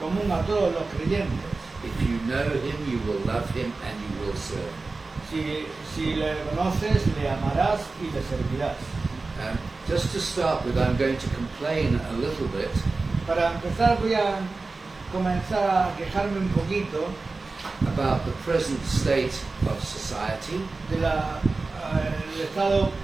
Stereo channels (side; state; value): left; quieter; 3.7 dB